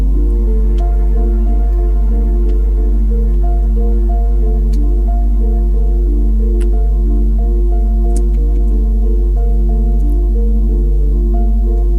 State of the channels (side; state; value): both; identical; correlation 1.00